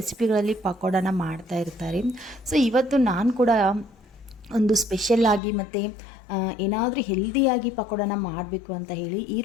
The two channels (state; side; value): drops out; right; at 5.4 s